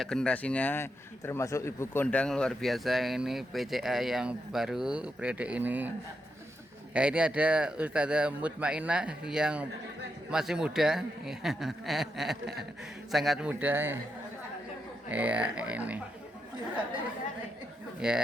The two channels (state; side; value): normal; both; correlation 0.84